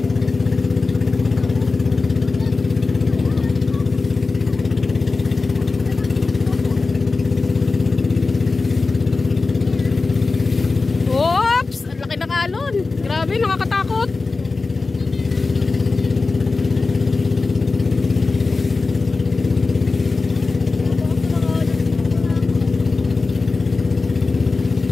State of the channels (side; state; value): right; quieter; 3.8 dB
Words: Oops! Ang laki ng alon. Grabe, nakakatakot.